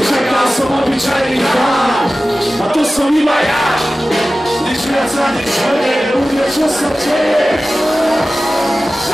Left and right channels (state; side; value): normal; both; correlation 0.95